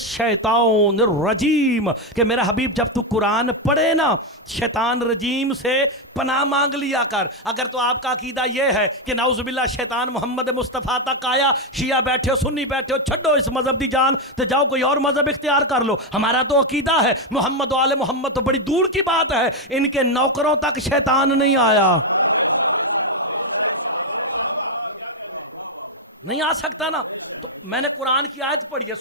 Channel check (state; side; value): normal; both; correlation 0.05